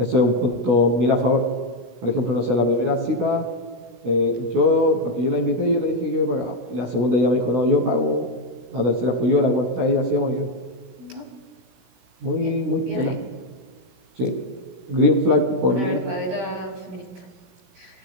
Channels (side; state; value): left; late; 17 ms